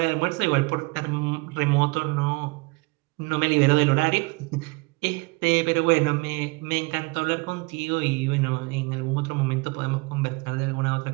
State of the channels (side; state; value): left; quieter; 26.7 dB